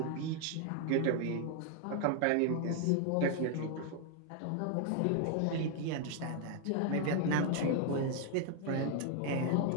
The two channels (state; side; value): different; both; correlation 0.00